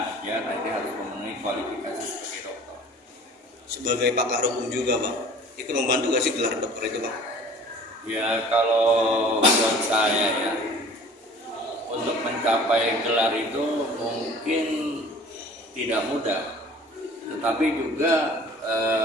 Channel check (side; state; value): both; normal; correlation 0.47